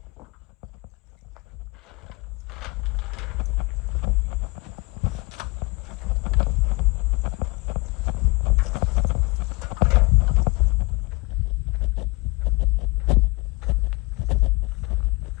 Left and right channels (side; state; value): right; quieter; 25.2 dB